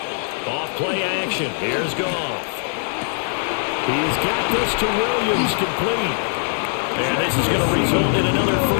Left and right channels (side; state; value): right; silent; 65 dB below the other